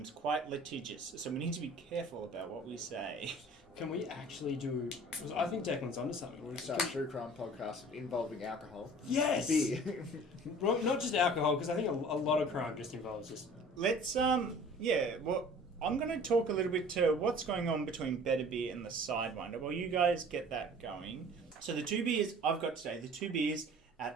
quite litigious, so we need to be careful about what we say. Can we actually do... I think Declan's onto something. We're going to start a true crime podcast involving alcohol. Yes! Beer. Well, not just alcohol, because I think a lot of crime just involves just... Let's, I'm going to talk a little bit to what's going on between Better Beer and the Sidewinder. Well, you guys get that going. So the two beers I've got today, the two beers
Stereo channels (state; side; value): normal; both; correlation 0.47